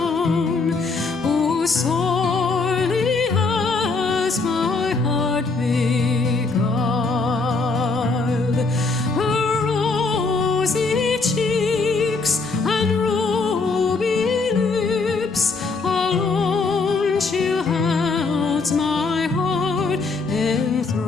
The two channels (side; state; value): right; quieter; 4.0 dB